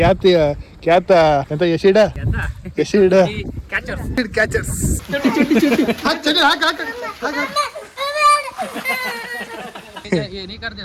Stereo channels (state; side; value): identical; both; correlation 1.00